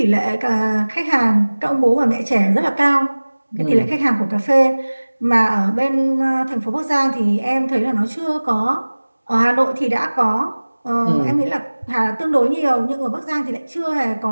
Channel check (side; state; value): both; inverted; correlation -1.00